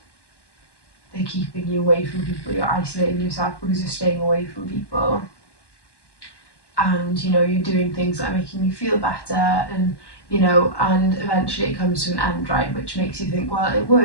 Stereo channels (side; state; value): right; late; 1.1 ms